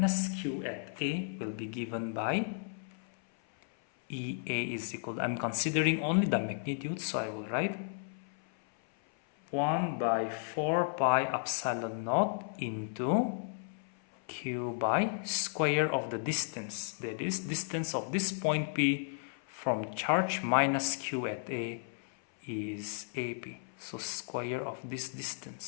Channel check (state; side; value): silent; right; 55 dB below the other